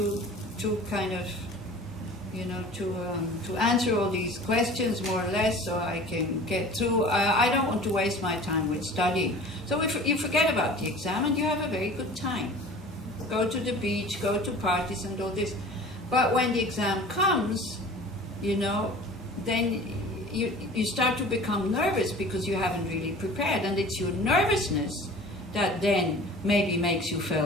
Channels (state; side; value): normal; both; correlation 0.42